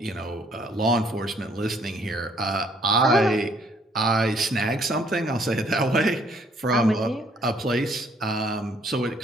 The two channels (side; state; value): both; normal; correlation 0.65